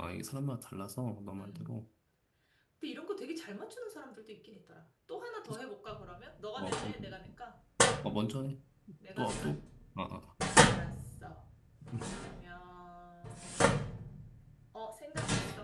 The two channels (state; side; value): identical; both; correlation 1.00